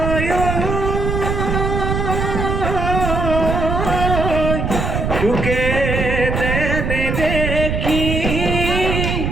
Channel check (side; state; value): right; noise; rumble, 1 dB below the sound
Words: তোকে দেনে দেখি